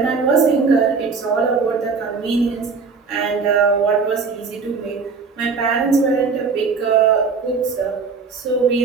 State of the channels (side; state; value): left; quieter; 5.0 dB